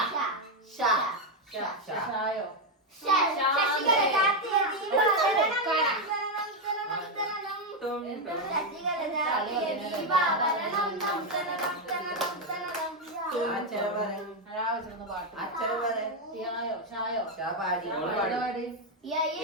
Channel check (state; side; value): normal; both; correlation 0.05